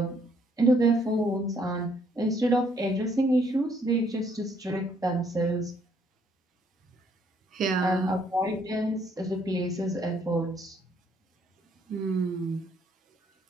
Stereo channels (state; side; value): normal; both; correlation 0.67